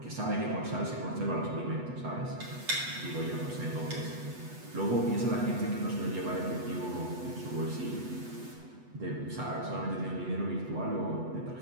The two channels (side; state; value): left; late; 8.1 ms